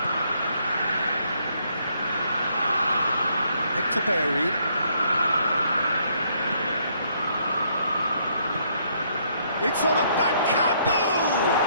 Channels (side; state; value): both; inverted; correlation -0.70